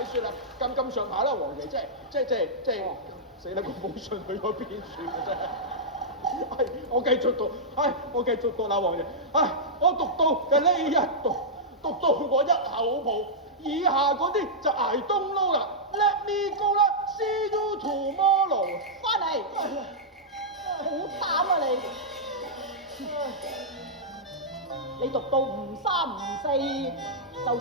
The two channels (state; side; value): normal; both; correlation -0.10